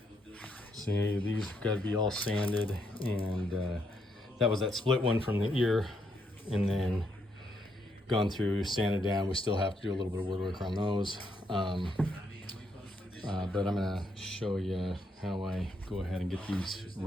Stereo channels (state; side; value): normal; both; correlation 0.76